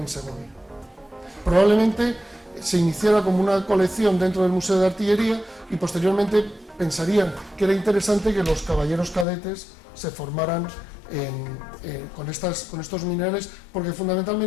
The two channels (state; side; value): drops out; right; at 9.2 s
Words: Segovia. Probablemente se iniciara como una colección dentro del Museo de Artillería y posteriormente pensarían que era interesante que los caballeros cadetes se formaran con estos minerales, porque